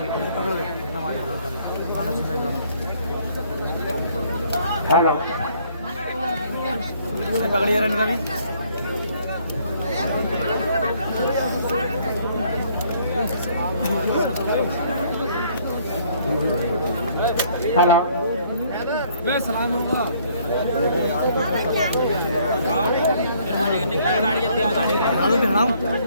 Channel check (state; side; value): inverted; both; correlation -0.63